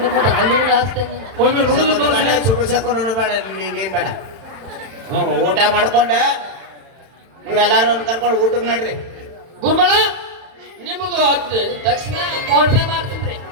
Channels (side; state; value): left; late; 31 ms